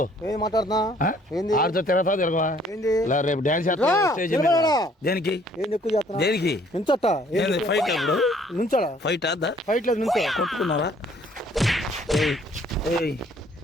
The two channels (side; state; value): both; normal; correlation 0.60